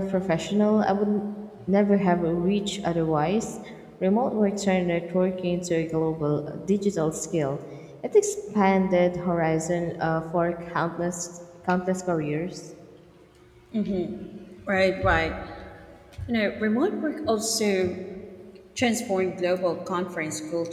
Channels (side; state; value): both; identical; correlation 1.00